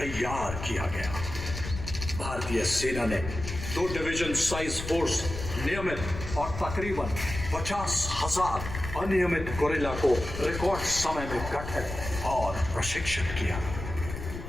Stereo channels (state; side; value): noise; left; rumble, 8 dB below the sound